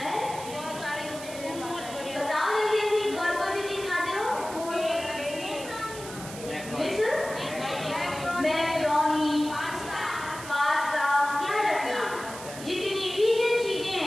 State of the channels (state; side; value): noise; right; hiss, 13 dB below the sound